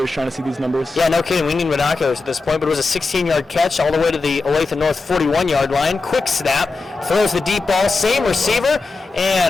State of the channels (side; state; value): right; quieter; 3.8 dB